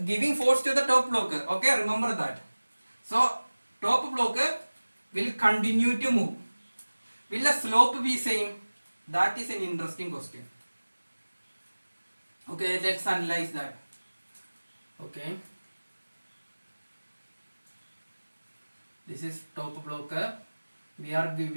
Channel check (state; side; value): inverted; both; correlation -1.00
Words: giving force to the top block. Okay, remember that. So top block will continue to move. Will the slope be same? That is an interesting question. Okay, let's analyze that. Okay, this is top block. We are